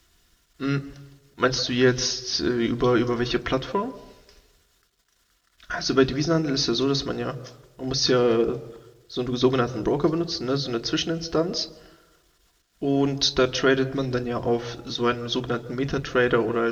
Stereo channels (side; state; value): both; identical; correlation 1.00